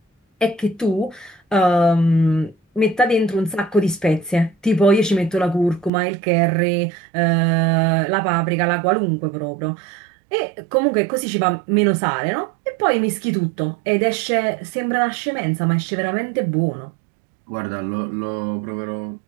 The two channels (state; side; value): drops out; left; at 5.9 s